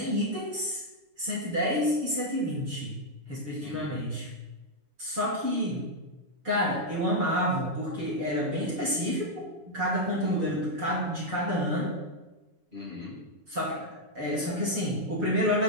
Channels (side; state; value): left; late; 7.1 ms